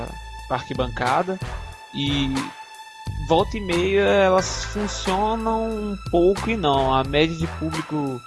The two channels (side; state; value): both; identical; correlation 1.00